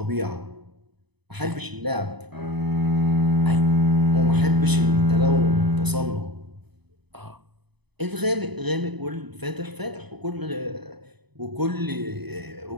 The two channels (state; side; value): late; left; 0.99 ms